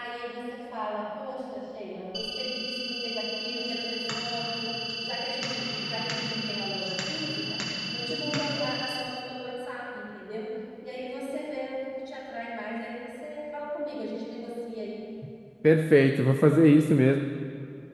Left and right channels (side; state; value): both; identical; correlation 1.00